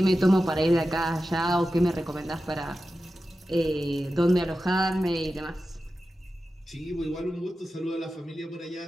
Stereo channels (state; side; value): normal; both; correlation 0.93